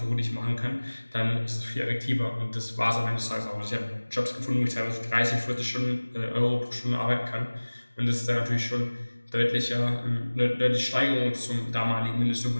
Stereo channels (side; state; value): both; inverted; correlation -1.00